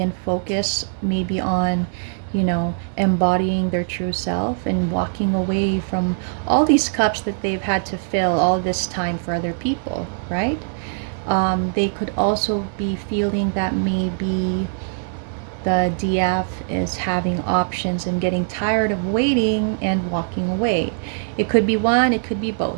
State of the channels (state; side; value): silent; left; 58 dB below the other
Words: and focus maybe on, you know, embodying their true self and walking away from all these cups that they've had to fill all this time for other people, right? They could also be feeling that maybe the DF is having options and getting tired of waiting and walking away. It could be one, it could be